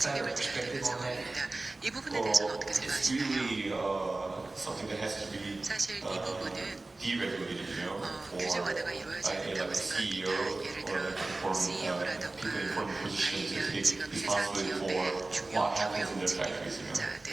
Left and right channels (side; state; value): left; quieter; 3.1 dB